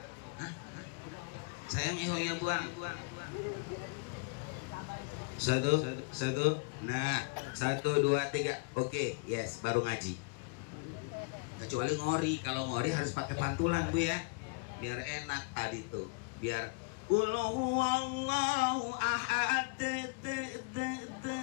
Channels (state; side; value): quieter; right; 31.1 dB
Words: sayang ehonya buang. 1 nah 1 2 3 oke yes baru ngaji. Kecuali ngori, kalau ngori harus pakai pantulan Bu ya, biar enak tadi tuh, biar Qul huwallahu ahad enak.